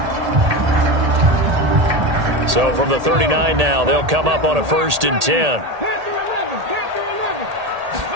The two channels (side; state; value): left; late; 1.8 ms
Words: So from the 39 now, they'll come up on a 1st and 10.